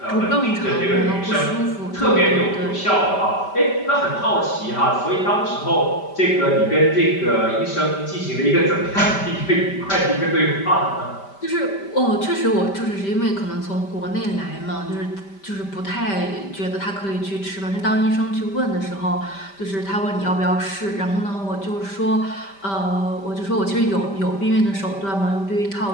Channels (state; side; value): late; right; 5.1 ms